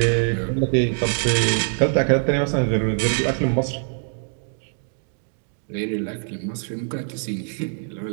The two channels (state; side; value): silent; left; digital silence